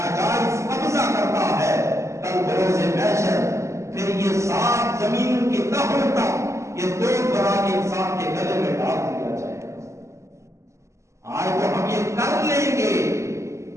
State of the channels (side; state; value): left; late; 0.14 ms